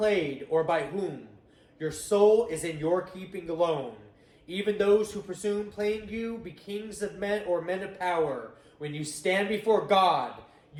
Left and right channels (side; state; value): both; identical; correlation 1.00